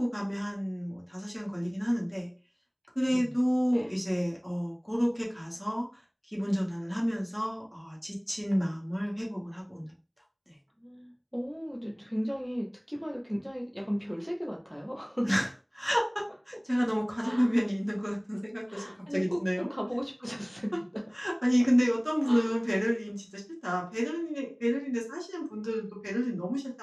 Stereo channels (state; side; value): identical; both; correlation 1.00